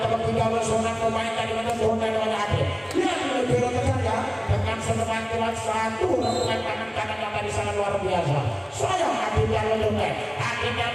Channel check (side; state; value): both; identical; correlation 1.00